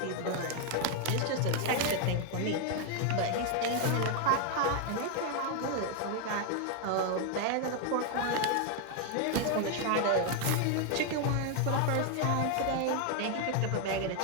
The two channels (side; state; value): both; different; correlation 0.00